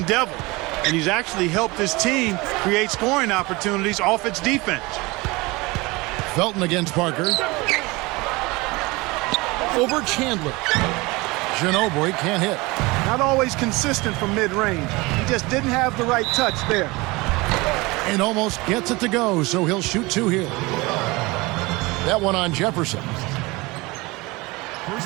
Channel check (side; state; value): left; quieter; 23.4 dB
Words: Devil, and he's actually helped his team create scoring opportunities off its defense. Felton against Parker. Over Chandler. Ginobili can't hit. Not always consistent from mid-range. He just didn't have the right touch there. And almost gets it to go, so he'll shoot 2 here. That one on Jefferson.